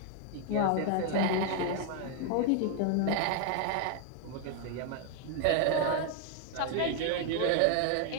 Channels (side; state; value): both; different; correlation 0.01